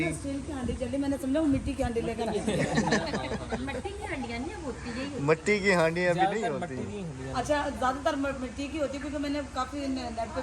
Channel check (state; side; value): identical; both; correlation 1.00